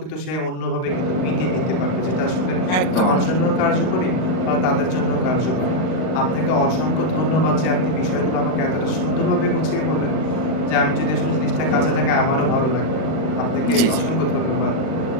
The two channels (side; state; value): right; late; 38 ms